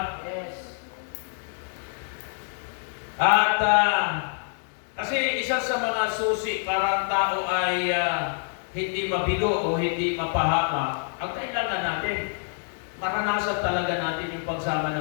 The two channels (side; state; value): right; silent; 61 dB below the other